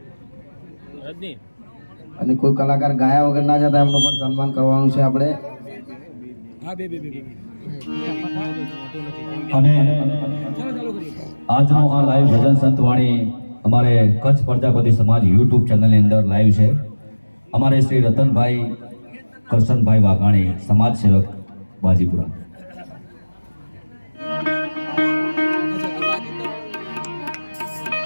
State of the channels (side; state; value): both; inverted; correlation -1.00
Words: અને કોઈ કલાકાર ગાયા વગર ના જતા એમનું પણ સન્માન કરવાનું છે આપણે. અને આજનો આ લાઈવ ભજન સંતવાણી અમારે કચ્છ પ્રજાપતિ સમાજ યુટ્યુબ ચેનલની અંદર લાઈવ છે. અમારે શ્રી રતનભાઈ કરશનભાઈ વાઘાણી, સમાજ સેવક બાજીપુરા.